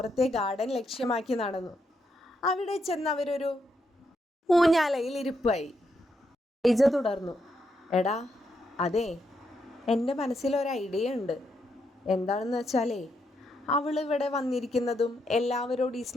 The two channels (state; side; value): normal; both; correlation 0.80